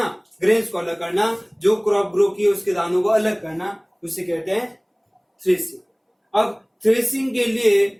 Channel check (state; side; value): identical; both; correlation 1.00